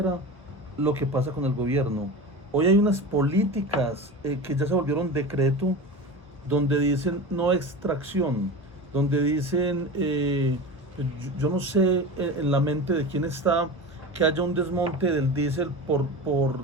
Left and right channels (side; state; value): both; normal; correlation 0.29